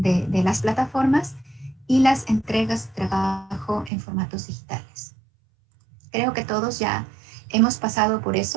las plataformas, y las entregas de trabajo en formatos digitales. Creo que todos ya hemos pasado por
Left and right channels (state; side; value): drops out; left; at 3.9 s